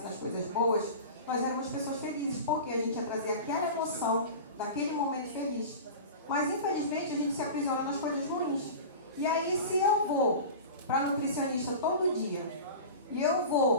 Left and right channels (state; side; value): inverted; both; correlation -0.32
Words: nas coisas boas, nós éramos pessoas felizes. Porque a gente ia trazer aquela emoção daquele momento feliz. Mas, infelizmente, a gente se aprisiona nas coisas ruins. E aí, se eu vou para nutricionista todo dia, e eu